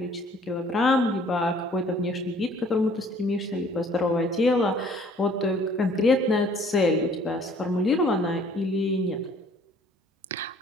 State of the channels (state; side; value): normal; both; correlation 0.57